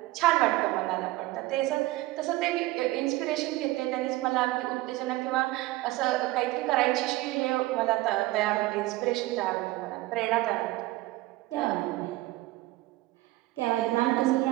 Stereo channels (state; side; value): quieter; left; 18.7 dB